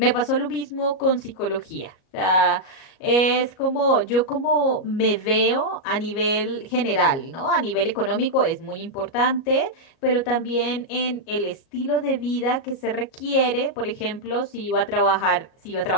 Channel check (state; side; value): late; right; 37 ms